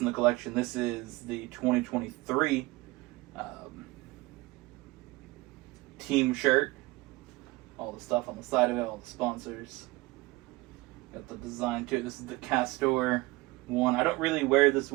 the collection. This is the 2023 team shirt. All the stuff on the side of it, all the sponsors. Got the design to it. This is the Castor one. I don't really wear this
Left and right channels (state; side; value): quieter; left; 22.0 dB